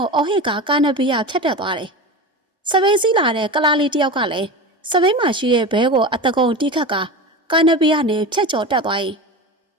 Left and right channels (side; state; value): both; normal; correlation 0.27